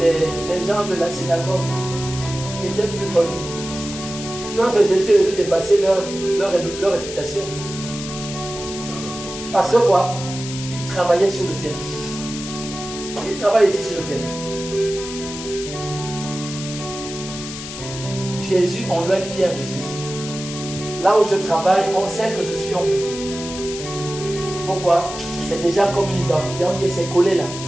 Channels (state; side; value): noise; left; hiss, 10 dB below the sound